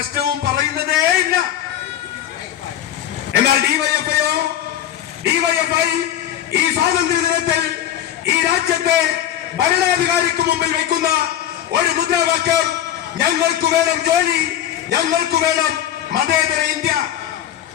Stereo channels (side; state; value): right; quieter; 11.3 dB